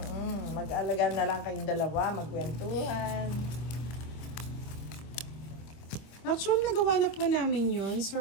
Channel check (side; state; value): right; late; 25 ms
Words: Mag-alaga na lang kayong dalawa, magkwentuhan. Actually, nagawa na po namin yun,